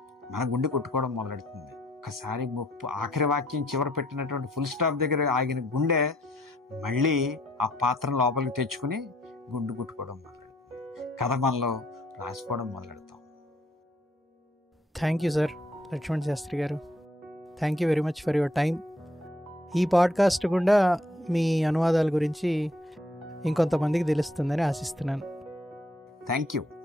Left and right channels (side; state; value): both; normal; correlation 0.67